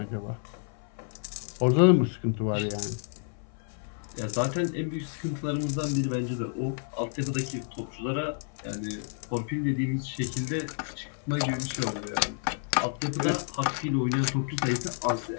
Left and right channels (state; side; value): silent; right; 55 dB below the other